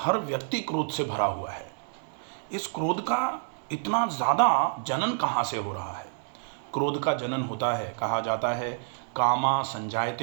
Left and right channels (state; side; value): silent; left; digital silence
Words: व्यक्ति क्रोध से भरा हुआ है। इस क्रोध का इतना ज़्यादा जनन कहाँ से हो रहा है? क्रोध का जनन होता है, कहा जाता है, कामा